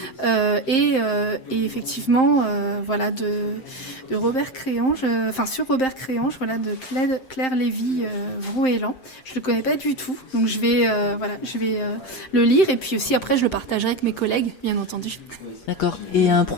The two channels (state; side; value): late; right; 7.7 ms